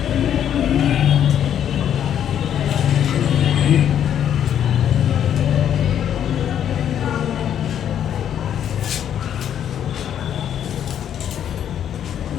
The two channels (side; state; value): right; quieter; 9.6 dB